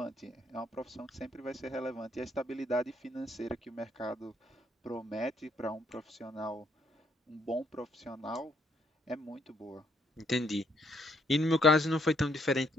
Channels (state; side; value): normal; both; correlation 0.70